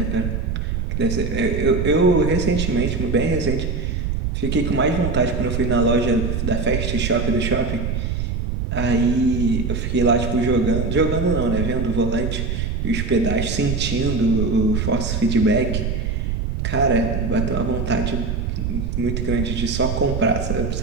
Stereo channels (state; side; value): noise; right; rumble, 1 dB below the sound